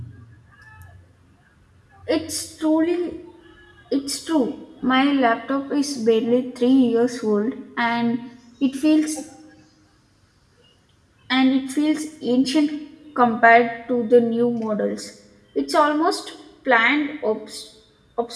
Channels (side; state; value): both; identical; correlation 1.00